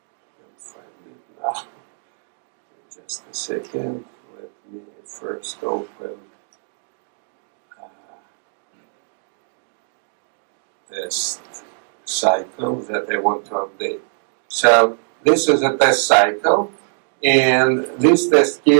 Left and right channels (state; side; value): silent; left; digital silence